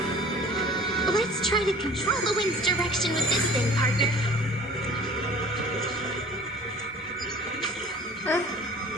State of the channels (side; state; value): both; normal; correlation 0.47